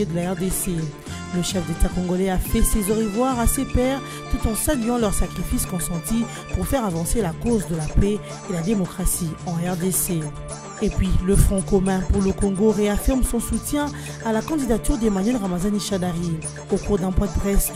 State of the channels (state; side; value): identical; both; correlation 1.00